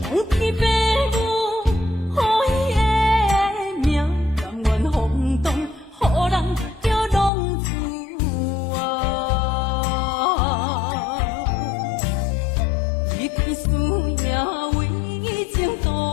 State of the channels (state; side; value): drops out; right; at 7.3 s